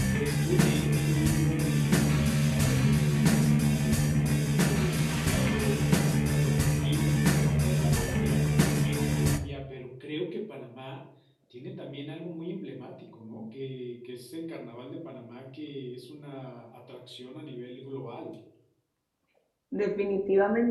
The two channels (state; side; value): identical; both; correlation 1.00